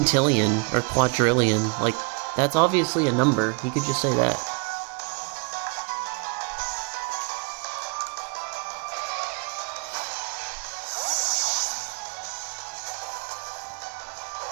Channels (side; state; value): left; quieter; 34.0 dB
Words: or quadrillion? Like, that's obviously a number. He could just say that.